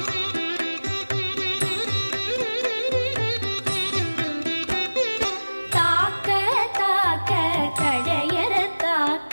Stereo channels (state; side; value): inverted; both; correlation -1.00